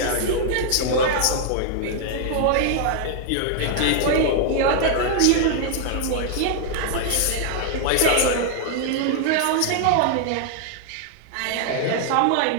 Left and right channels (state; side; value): different; both; correlation 0.00